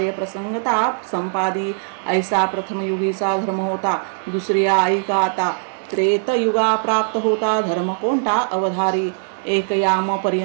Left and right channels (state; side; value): silent; left; digital silence